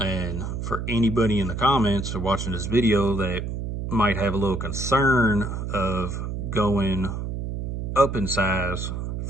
for anybody in the comments or watching this video that might have a little concern of going up in size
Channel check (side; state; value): right; noise; hum, 4 dB below the sound